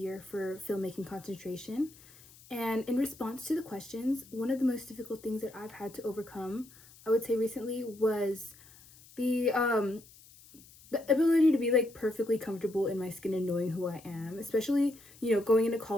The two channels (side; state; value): left; noise; hiss, 23 dB below the sound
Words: for filmmaking concentration. And in response to the questions, one of the most difficult things that I've had to overcome, I would say recently, was the um the ability to be like perfectly comfortable in my skin and knowing who I am. Especially, going into